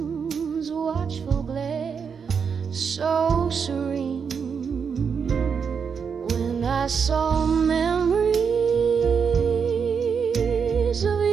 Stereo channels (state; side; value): quieter; left; 6.4 dB